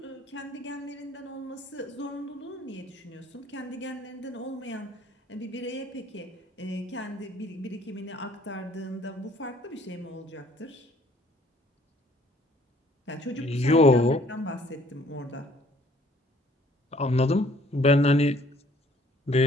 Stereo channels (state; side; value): normal; both; correlation 0.59